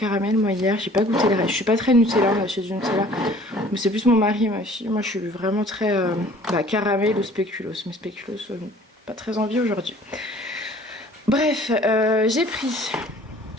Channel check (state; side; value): normal; both; correlation 0.51